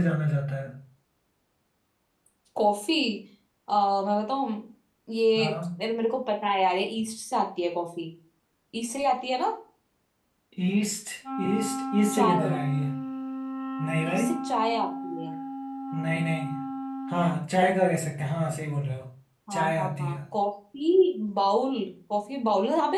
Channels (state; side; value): identical; both; correlation 1.00